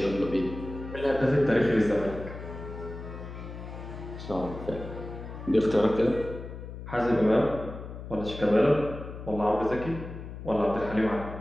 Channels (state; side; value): noise; left; hum, 11 dB below the sound